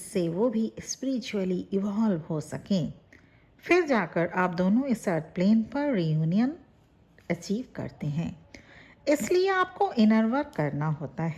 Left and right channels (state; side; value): identical; both; correlation 1.00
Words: वो भी स्पिरिचुअली इवॉल्व हो सकें। फिर जाकर आप दोनों इस अर्थ प्लेन पर रियूनियन अचीव करते हैं। इसलिए आपको इनर वर्क करना होता